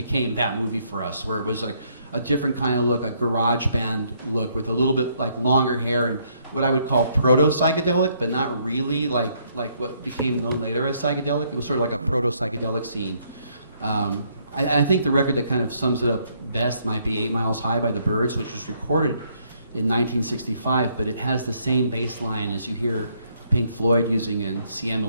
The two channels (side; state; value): both; inverted; correlation -0.70